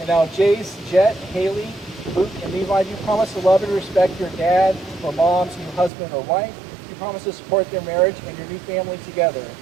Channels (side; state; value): left; drops out; at 5.9 s